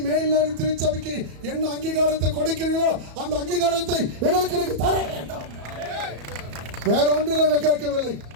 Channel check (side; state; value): left; late; 34 ms